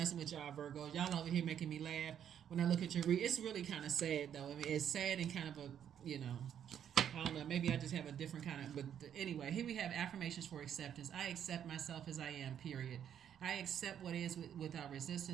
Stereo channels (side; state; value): left; quieter; 9.3 dB